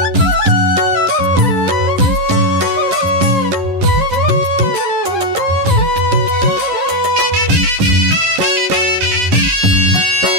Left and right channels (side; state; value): left; late; 11 ms